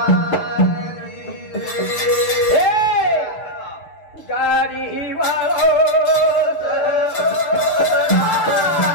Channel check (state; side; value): late; right; 6.8 ms